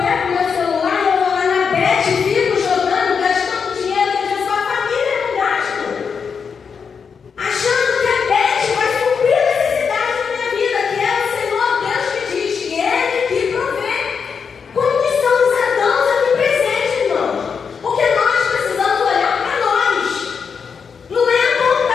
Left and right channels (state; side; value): quieter; right; 6.1 dB